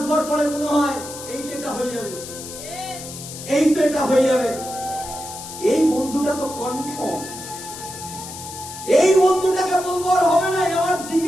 পরে মনে হয় এই তো এটা হয়ে যাবে, এই তো এটা হয়ে যাবে। এই বন্ধুটা তো কনফার্ম, এই বন্ধুটাকে বলবো আর হবে না, আমার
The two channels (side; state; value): left; noise; hiss, 12 dB below the sound